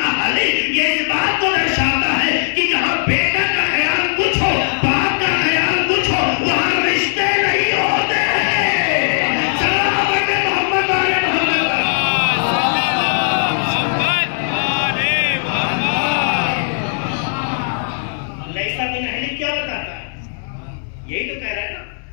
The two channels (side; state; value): right; silent; digital silence